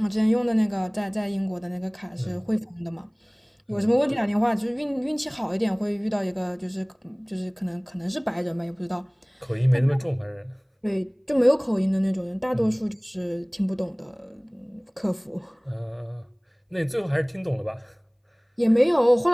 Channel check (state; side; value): identical; both; correlation 1.00